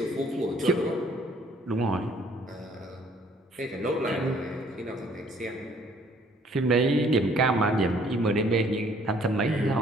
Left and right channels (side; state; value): both; normal; correlation 0.60